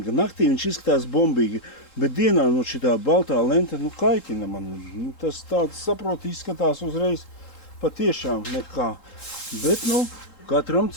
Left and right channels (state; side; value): late; right; 3.7 ms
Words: Naktī viņš izskatās bombīgi, bet dienā šitā baltā lenta kaitina man. Tas tāds, saproti, izskatās uzreiz patiešām nekā. Bet, katram